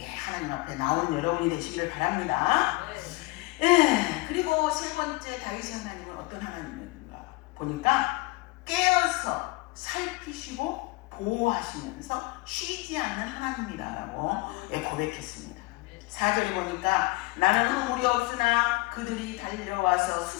하나님 앞에 나온 여러분이 되시기를 바랍니다. 그리고 세 번째, 다윗의 하나님은 어떤 하나님인가 보니까 깨어서 살피시고 보호하시면서 쉬지 않는 하나님이다라고 고백했습니다. 4절에 보니까 나는 허물이 없으나 그들이 달려와서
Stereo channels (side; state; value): right; quieter; 23.2 dB